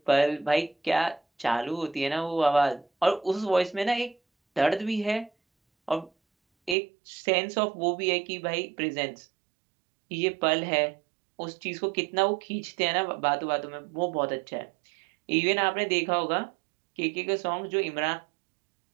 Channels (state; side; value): drops out; left; at 6.8 s